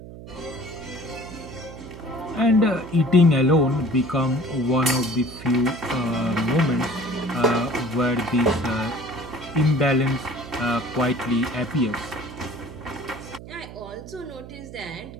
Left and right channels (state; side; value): noise; right; hum, 14 dB below the sound